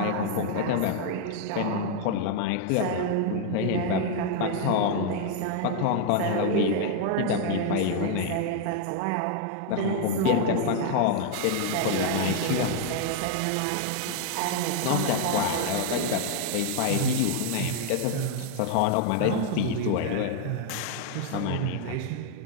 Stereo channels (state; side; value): different; both; correlation 0.00